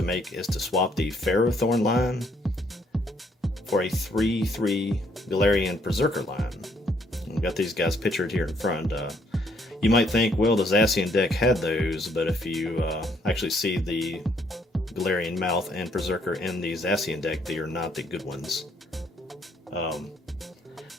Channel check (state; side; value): normal; both; correlation 0.68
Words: make is to swap the Ferrothorn line for a 3-3 Galarian Perrserker line. We've got these guys pictured here in front. You might think, well, the Zacian deck had those, but if you actually see the Galarian Meowth and Perrserker in the Zacian deck, they are not the good ones.